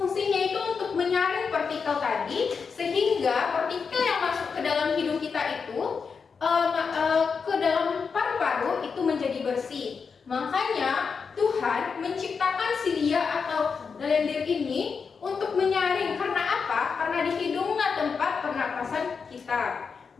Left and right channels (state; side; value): quieter; right; 5.6 dB